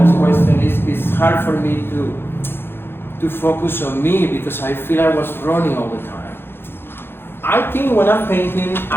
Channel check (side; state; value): right; late; 0.11 ms